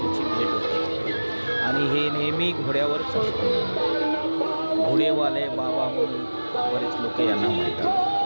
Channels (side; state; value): both; inverted; correlation -1.00